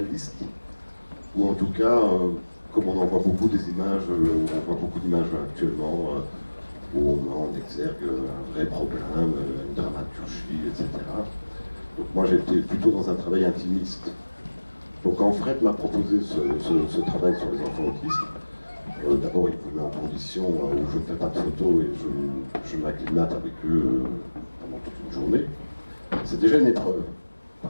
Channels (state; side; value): inverted; both; correlation -1.00